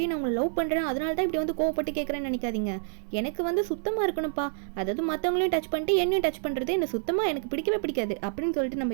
நான் உங்களை லவ் பண்ணுறேன் அதனால தான் இப்படி வந்து கோவப்பட்டு கேட்குறேன்னு நினைக்காதீங்க, எனக்கு வந்து சுத்தமாக இருக்கணும்ப்பா, அதாவது மற்றவங்களையும் டச் பண்ணிட்டு என்னையும் டச் பண்ணுறது எனக்கு சுத்தமாக எனக்கு பிடிக்கவே பிடிக்காது அப்படின்னு சொல்லிட்டு நம்ம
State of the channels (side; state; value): left; silent; 59 dB below the other